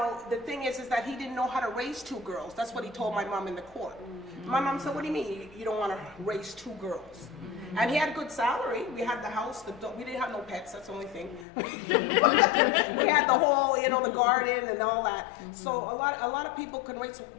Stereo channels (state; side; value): drops out; right; at 11.5 s